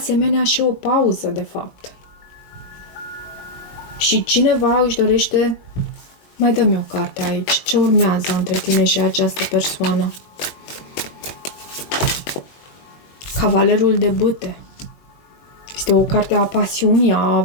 și o pauză, de fapt. Și cineva își dorește... Mai dă-mi o carte aici. Ce urmează între tine și această persoană? Cavalerul de bâte. Este o carte a pasiunii, a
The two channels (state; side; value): late; right; 21 ms